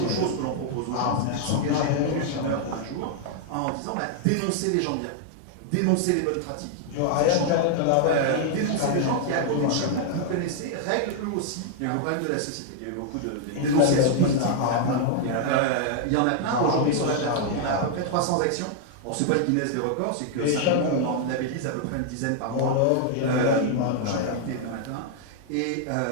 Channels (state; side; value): different; both; correlation 0.00